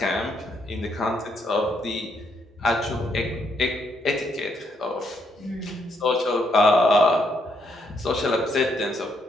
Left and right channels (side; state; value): both; normal; correlation 0.74